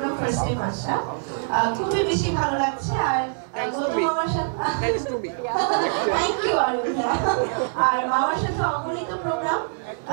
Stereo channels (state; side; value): silent; left; digital silence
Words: ফার্স্ট টাইম আসা, খুবই বেশি ভালো লাগছে। আর গৌতম মামার সাথে থ্যাংক ইউ আরিয়াম ভাইয়া। আর মামার সাথে অগণিত প্রোগ্রাম